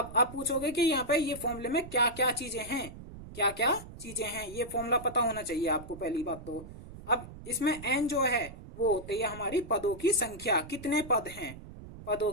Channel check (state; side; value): noise; right; rumble, 14 dB below the sound